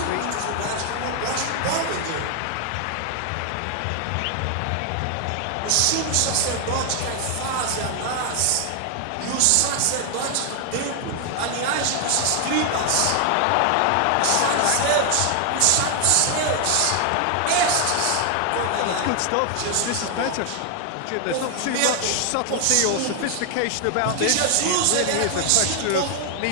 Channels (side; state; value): both; different; correlation 0.00